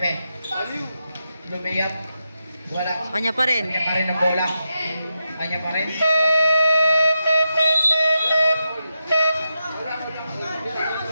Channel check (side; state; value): both; inverted; correlation -0.87